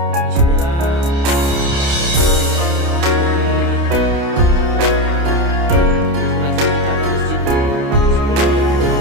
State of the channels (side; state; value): left; late; 29 ms